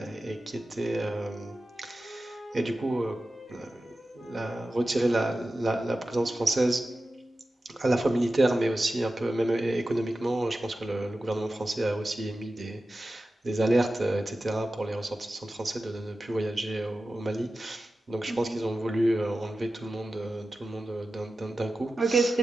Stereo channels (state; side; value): normal; both; correlation 0.94